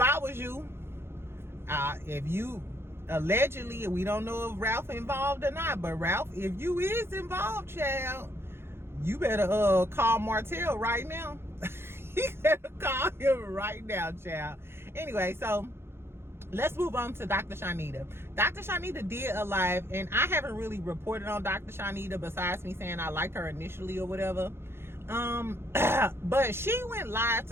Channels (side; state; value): left; late; 0.12 ms